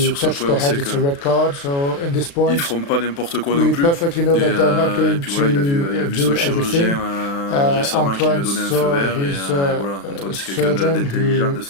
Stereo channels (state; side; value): late; right; 36 ms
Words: ce touch point, the on head, sait it's a red card. So in this qu'ils point, ne feront pas n'importe quoi we non plus. perfectly know that they're not Et going puis voilà, il a vu to son do chirurgien everything. récemment qui lui a Antoine donné un feu saw vert. Et his voilà, Antoine, c'est quelqu'un surgeon d'intelligent, who de